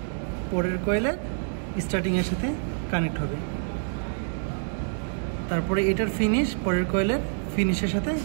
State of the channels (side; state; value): left; silent; 60 dB below the other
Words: পরের কয়েলের স্টার্টিংয়ের সাথে কানেক্ট হবে। তারপরে এটার ফিনিশ পরের কয়েলের ফিনিশের সাথে